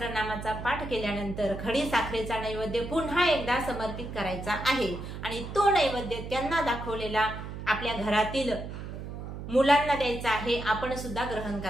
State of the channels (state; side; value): noise; right; hum, 8 dB below the sound